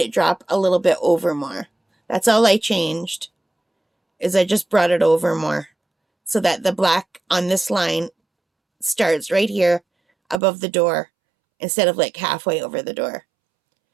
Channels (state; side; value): drops out; left; at 10.4 s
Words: it drop a little bit over more. That's all I changed. Is I just brought it over more. So that the black on this line starts right here above the door. Instead of like halfway over the door.